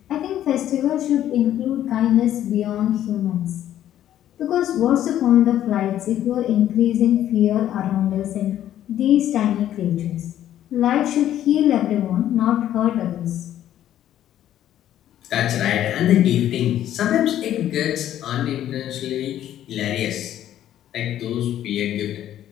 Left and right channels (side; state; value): right; quieter; 11.7 dB